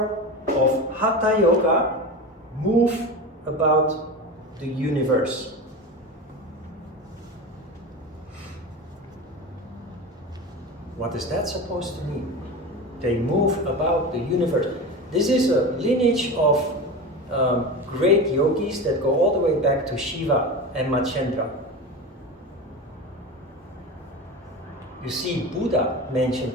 of Hatha Yoga, move about the universe. What is that supposed to mean? They move about the universe. This is a lineage of great yogis that go all the way back to Shiva and Machendra. You see Buddha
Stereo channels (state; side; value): normal; both; correlation 0.27